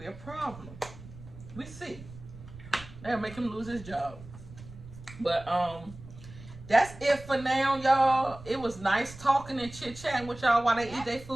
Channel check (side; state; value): right; noise; rumble, 16 dB below the sound